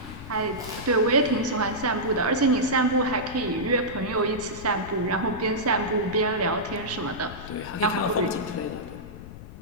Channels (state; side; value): noise; left; rumble, 13 dB below the sound